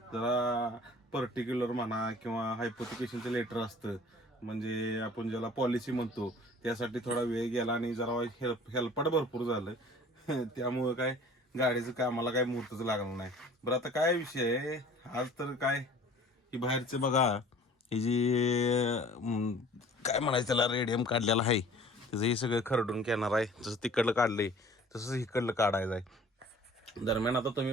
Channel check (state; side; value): normal; both; correlation 0.49